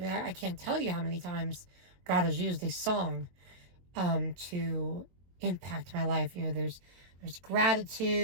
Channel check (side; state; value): left; late; 22 ms